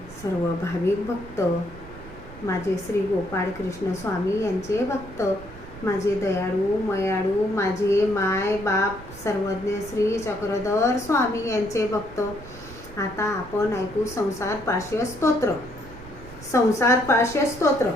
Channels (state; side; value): noise; right; rumble, 16 dB below the sound